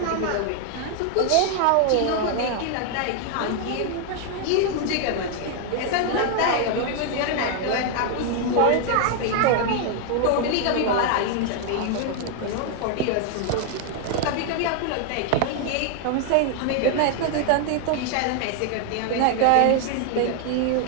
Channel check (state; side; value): different; both; correlation 0.00